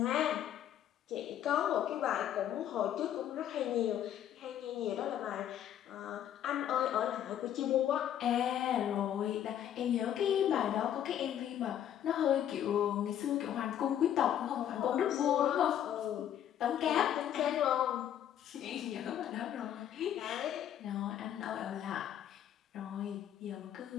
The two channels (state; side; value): quieter; right; 10.5 dB